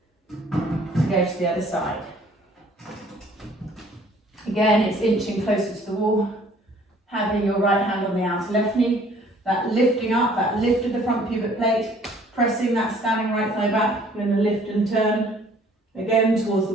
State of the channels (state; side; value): normal; both; correlation 0.57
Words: to go to the other side. Again, it's inching closer to the wall, having your right hand on the outer left knee, that lifting up, that lift of the front pubic plate, pressing that standing right thigh back. We're going to lift and turn again towards the